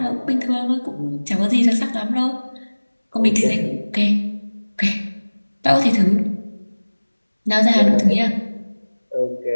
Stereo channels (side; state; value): both; inverted; correlation -1.00